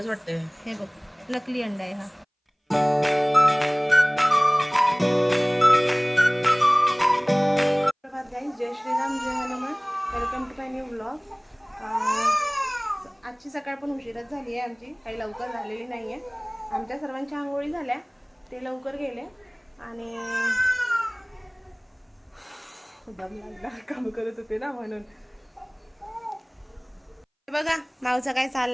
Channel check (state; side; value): identical; both; correlation 1.00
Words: वाटतंय. हे बघ, नकली अंडा आहे हा. जय श्रीराम, जय Hanuman. Welcome to my new blog. आजची सकाळ पण उशिराच झाली आहे आमची, काही लवकर झालेली नाही आहे. आमच्या सर्वांच्या आंघोळी झाल्या, ते लवकर गेले आणि दम लागला, काम करत होते ना म्हणून. बघा माऊचा काय